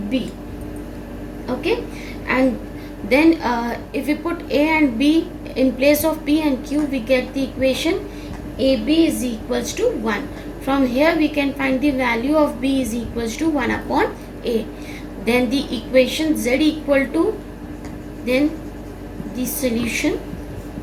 b. Okay, and then if we put a and b in place of p and q, we get the equation ab is equals to 1. From here we can find the value of b is equals to 1 upon a. Then the equation z equal to, then the solution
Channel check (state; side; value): identical; both; correlation 1.00